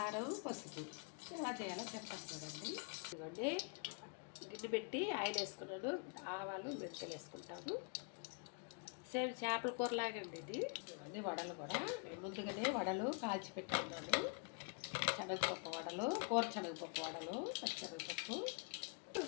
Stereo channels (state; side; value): quieter; right; 37.6 dB